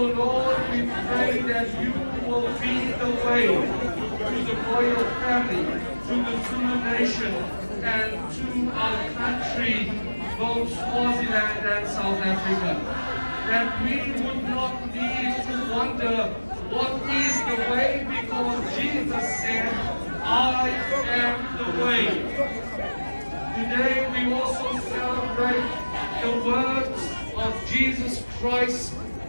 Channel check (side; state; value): both; inverted; correlation -1.00